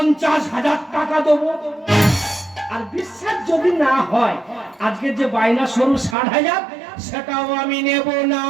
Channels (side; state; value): left; drops out; at 6.2 s